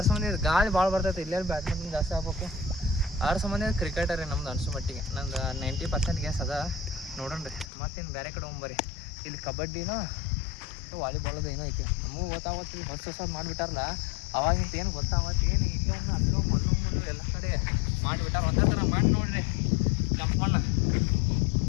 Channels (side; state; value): right; drops out; at 7.7 s